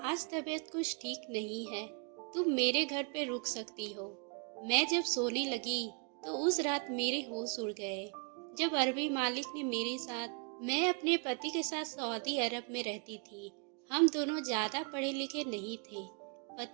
आज तबीयत कुछ ठीक नहीं है, तुम मेरे घर पे रुक सकती हो। मैं जब सोने लगी तो उस रात मेरे होश उड़ गए। जब अरबी मालिक ने मेरे साथ मैं अपने पति के साथ सऊदी अरब में रहती थी। हम दोनों ज्यादा पढ़े लिखे नहीं थे।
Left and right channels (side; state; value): left; quieter; 38.0 dB